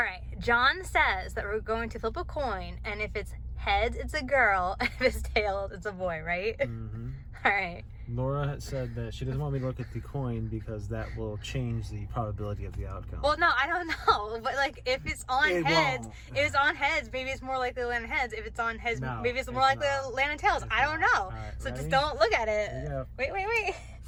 John says that we're going to flip a coin, and if it's heads, it's a girl, and if it's tails, it's a boy, right? Mm-hmm. All right. Laura had said that she doesn't want me to look at the coin because that will change the probability of the outcome. Well, no, I don't know, but like if it's on heads, if it's on heads, maybe it's more likely to land in heads. If it's on heads, maybe it's more likely to land in tails. I don't know. Right, so ready? just don't look at it. Here you go. Wait.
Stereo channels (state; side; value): identical; both; correlation 1.00